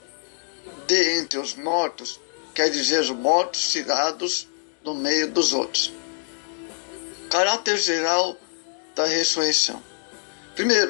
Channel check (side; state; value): right; silent; digital silence